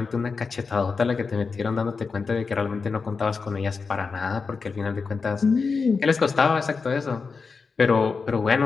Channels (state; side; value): quieter; right; 4.8 dB